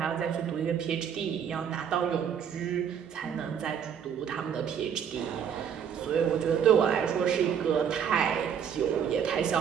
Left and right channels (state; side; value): quieter; left; 8.1 dB